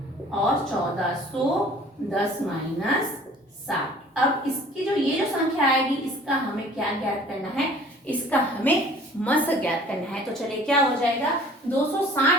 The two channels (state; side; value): normal; both; correlation 0.50